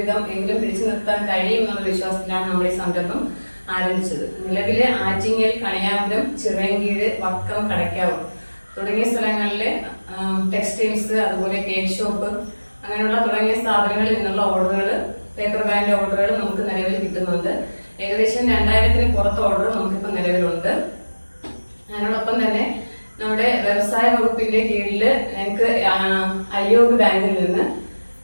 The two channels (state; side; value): inverted; both; correlation -1.00